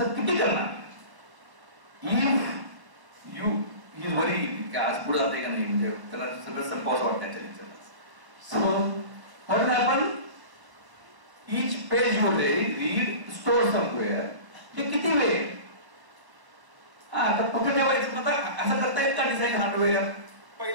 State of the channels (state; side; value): late; left; 1.0 ms